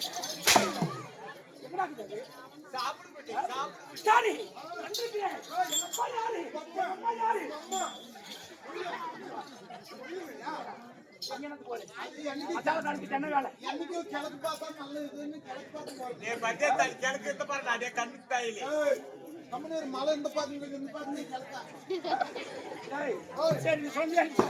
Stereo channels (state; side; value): identical; both; correlation 1.00